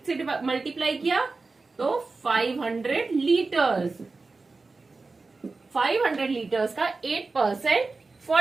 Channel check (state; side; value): quieter; left; 3.8 dB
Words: से मल्टीप्लाई किया तो 500 लीटर्स। 500 लीटर्स का 8%